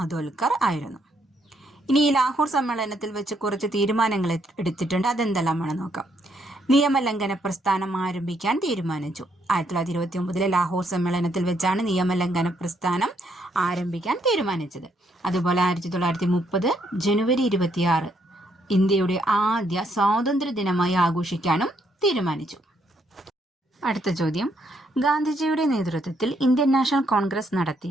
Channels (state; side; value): normal; both; correlation 0.73